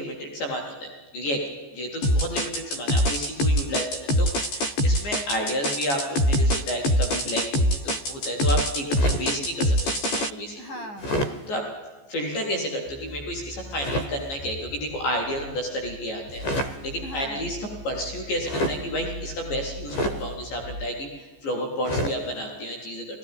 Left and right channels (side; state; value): right; late; 14 ms